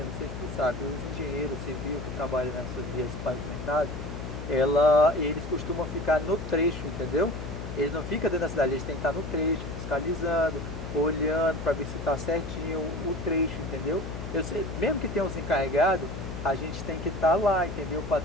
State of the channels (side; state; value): left; noise; hum, 7 dB below the sound